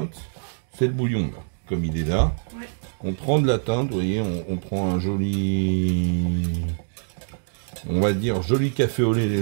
C'est le bouillon, là. Comme il est là. Ouais. On prend de la teinte, vous voyez, on prend un joli, on va dire, joli café au lait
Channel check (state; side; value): silent; left; digital silence